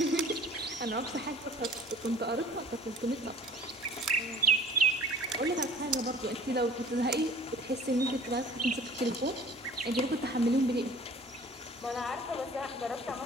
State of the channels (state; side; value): normal; both; correlation 0.49